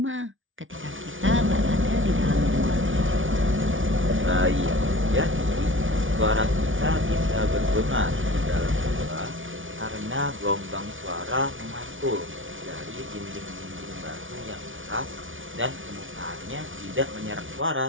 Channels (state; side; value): late; left; 0.57 ms